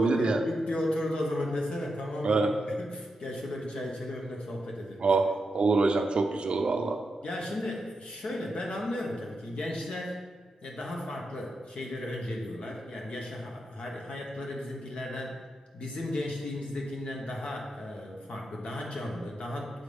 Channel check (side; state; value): both; normal; correlation 0.86